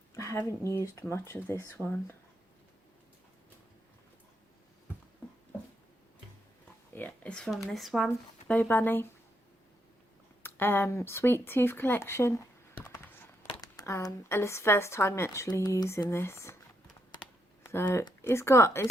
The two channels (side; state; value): both; normal; correlation 0.79